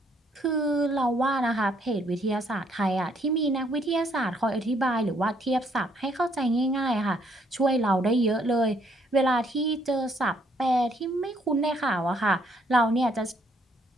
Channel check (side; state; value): both; normal; correlation 0.68